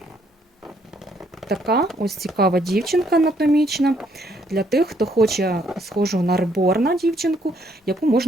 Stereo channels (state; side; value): normal; both; correlation 0.69